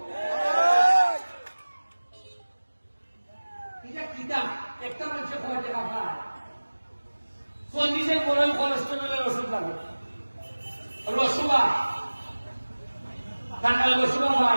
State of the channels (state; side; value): inverted; both; correlation -1.00